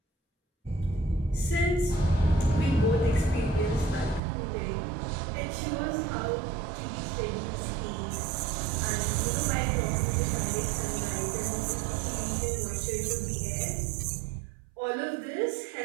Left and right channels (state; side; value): drops out; left; at 4.2 s